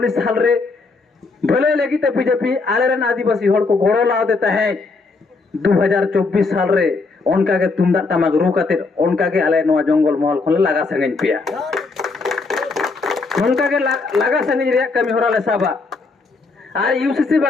साल रे भले लगी ते बीजेपी आले रन आदिवासी होड़ को गोड़ो लाव देता है 2024 साल रे उनका के तुमदा टमाक रु कते उनका के आले नोआ जंगल महल खोले लगा संगन पिया उनका के लगा संगन रिया कमी होरा ले साबा आर UCC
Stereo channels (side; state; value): right; quieter; 4.0 dB